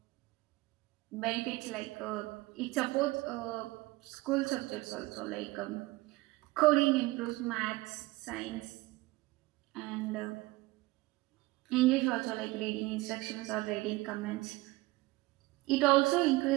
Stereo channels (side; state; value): left; quieter; 20.6 dB